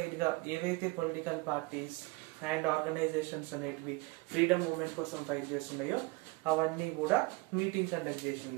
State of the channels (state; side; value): quieter; left; 24.4 dB